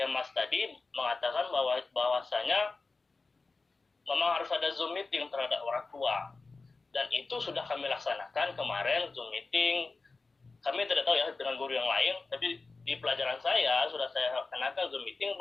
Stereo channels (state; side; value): quieter; right; 3.9 dB